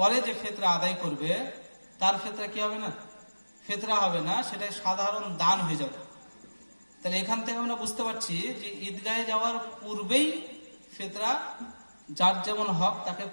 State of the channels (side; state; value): both; inverted; correlation -1.00